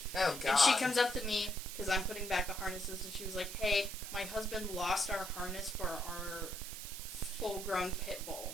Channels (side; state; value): right; noise; hiss, 9 dB below the sound